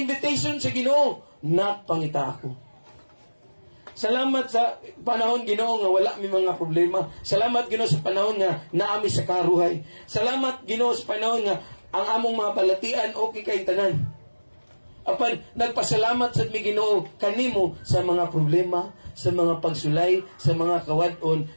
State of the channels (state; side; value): inverted; both; correlation -1.00